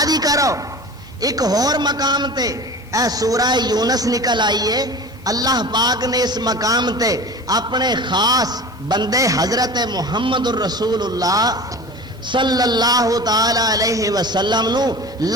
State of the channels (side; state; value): both; normal; correlation 0.36